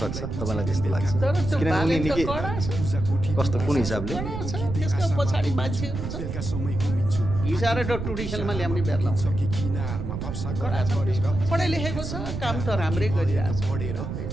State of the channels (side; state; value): right; noise; rumble, 5 dB below the sound